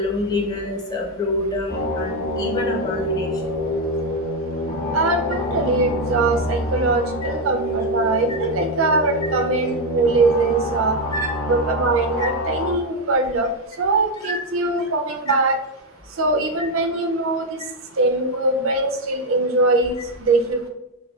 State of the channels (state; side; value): normal; both; correlation 0.06